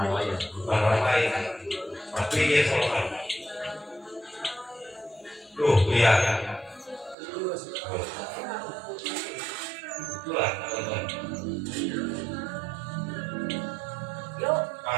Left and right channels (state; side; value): drops out; left; at 7.2 s